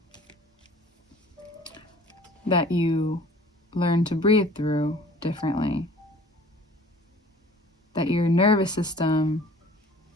that you learn to breathe through differently? That your nervous system,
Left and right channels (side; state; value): both; normal; correlation 0.50